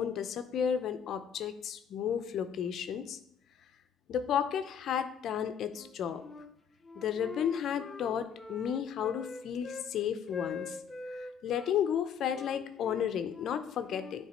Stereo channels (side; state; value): right; quieter; 8.0 dB